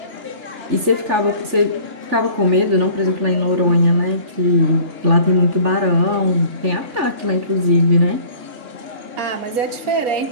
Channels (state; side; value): late; left; 3.4 ms